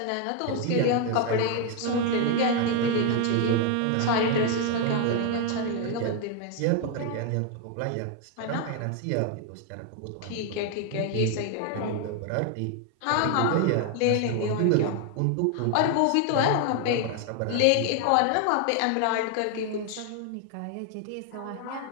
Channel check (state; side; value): different; both; correlation 0.01